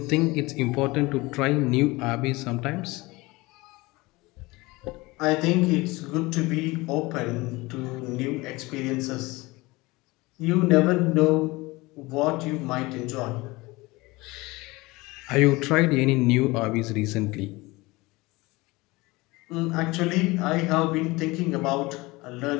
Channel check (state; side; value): quieter; right; 22.3 dB